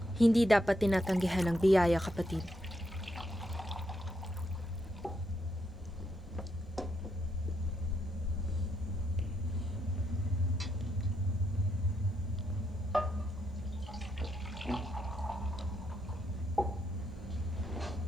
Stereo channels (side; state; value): both; normal; correlation 0.79